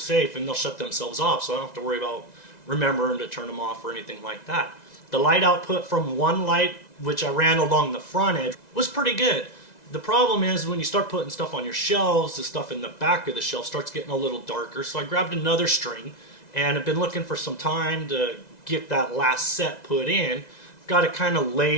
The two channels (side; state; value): right; late; 2.0 ms